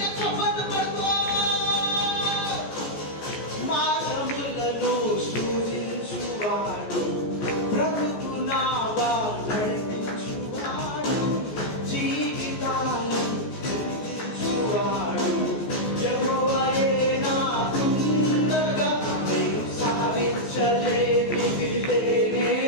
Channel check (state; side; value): late; right; 14 ms